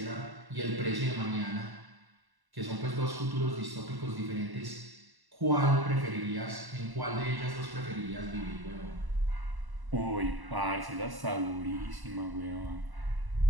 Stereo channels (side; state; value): left; late; 1.1 ms